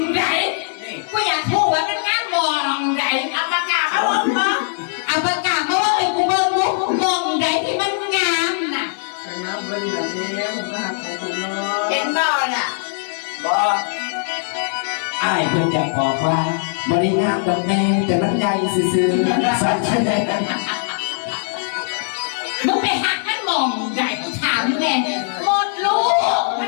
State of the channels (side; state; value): right; silent; digital silence